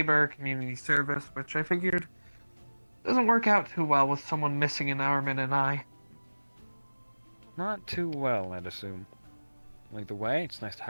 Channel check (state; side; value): inverted; both; correlation -1.00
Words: community service, which I figured doesn't work out too well with someone missing an arm and an eye. Not too well, I'd assume. Either way, it's nice to